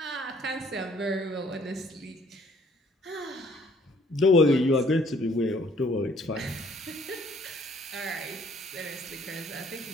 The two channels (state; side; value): normal; both; correlation 0.61